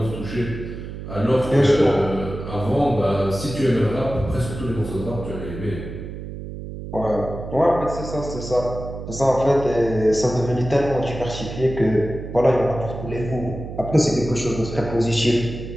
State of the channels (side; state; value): right; noise; hum, 9 dB below the sound